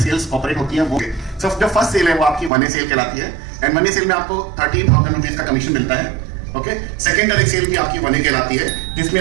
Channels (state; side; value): drops out; left; at 2.5 s